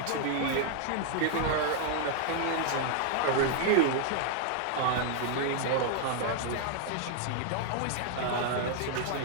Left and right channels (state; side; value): different; both; correlation 0.00